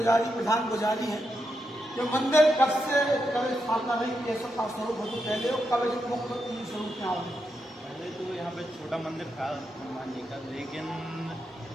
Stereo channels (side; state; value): both; normal; correlation 0.84